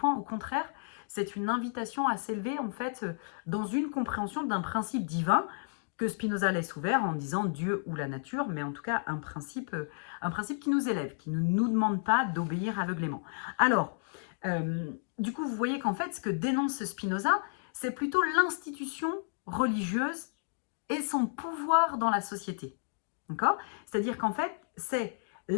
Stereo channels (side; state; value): right; silent; digital silence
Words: au contraire, c'est une invitation à s'élever en fait dans une compréhension d'un principe divin que Spinoza laisse ouvert en disant Dieu ou la nature, mais en tout cas un principe qui nous élève, qui ne nous demande pas d'obéir aveuglément. Alors, du coup, vous voyez qu'en fait, ce que dénonce Spinoza, c'est plutôt l'institution religieuse et son pouvoir dans la société. D'accord ? C'est-à-dire qu'en fait, c'est